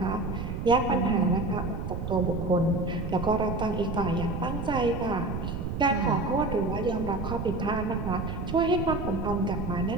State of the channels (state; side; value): noise; right; rumble, 4 dB below the sound